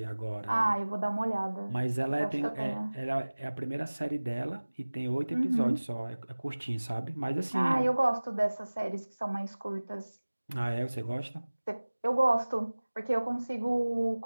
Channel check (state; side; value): inverted; both; correlation -1.00